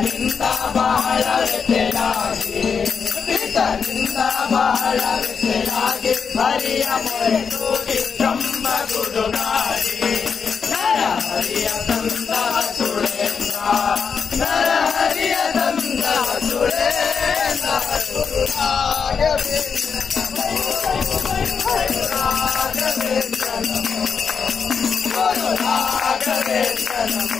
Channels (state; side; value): quieter; right; 6.1 dB